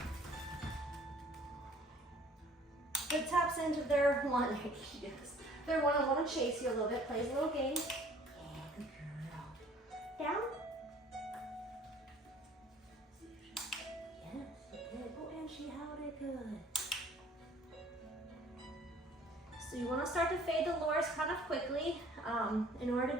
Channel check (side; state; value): both; normal; correlation 0.54